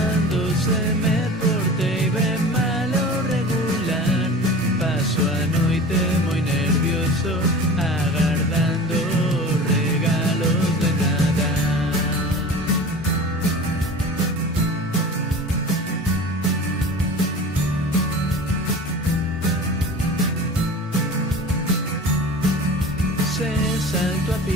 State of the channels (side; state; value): both; normal; correlation 0.37